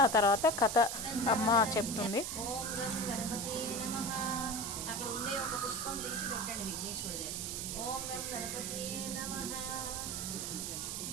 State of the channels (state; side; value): noise; right; hiss, 3 dB below the sound